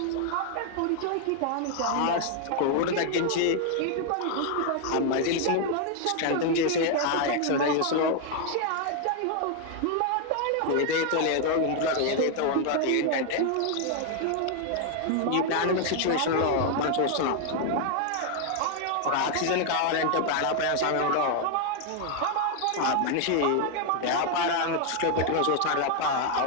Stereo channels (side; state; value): both; different; correlation 0.00